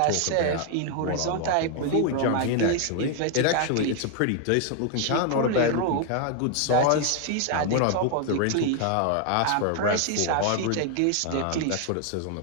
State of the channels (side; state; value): both; different; correlation 0.00